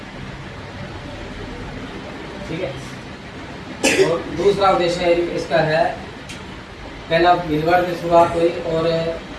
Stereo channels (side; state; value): both; identical; correlation 1.00